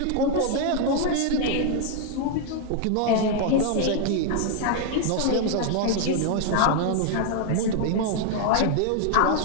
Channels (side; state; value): both; different; correlation 0.00